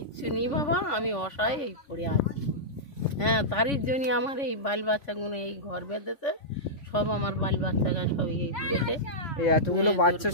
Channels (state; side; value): late; right; 3.5 ms